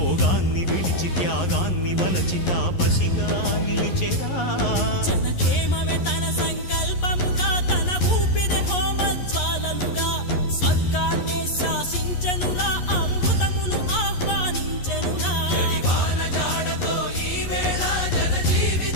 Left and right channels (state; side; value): late; right; 11 ms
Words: విడిచి త్యాగాన్ని వలచి తాపసిగా నిలిచెరా జనక్షేమమే తన సంకల్పముగా తన ఊపిరి హోమజ్వాలలుగా స్వర్గాన్నే శాసించెనురా అమృతమును ఆహ్వానించెనురా జాడతో ఈ వేళ జన